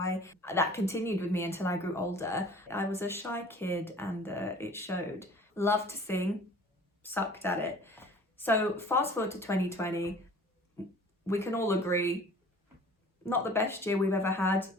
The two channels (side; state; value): both; normal; correlation 0.48